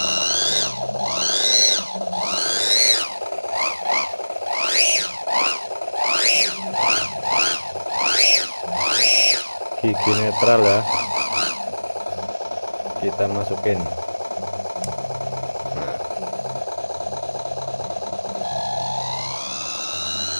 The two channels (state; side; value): inverted; both; correlation -1.00